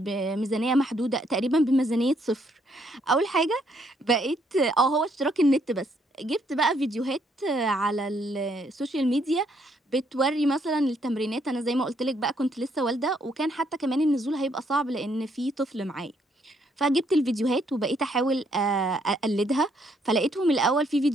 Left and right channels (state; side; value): normal; both; correlation 0.71